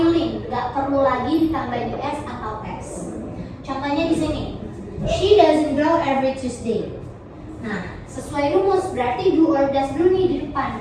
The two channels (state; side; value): identical; both; correlation 1.00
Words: gak perlu lagi ditambahin s atau s. Contohnya di sini, she doesn't draw every Tuesday. Nah, sesuai rumus berarti do or does dulu nih di depan.